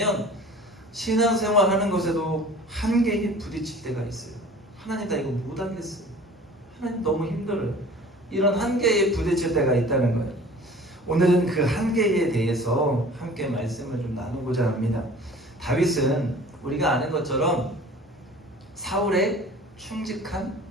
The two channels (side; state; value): both; normal; correlation 0.45